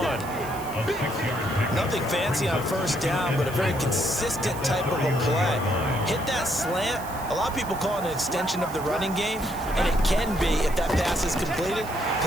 Nothing fancy on 1st down, but a very consistent type of a play. Hit that slant. A lot of people call it an extension of the running game, and it can be if that pass is completed,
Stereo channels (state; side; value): noise; right; hiss, 16 dB below the sound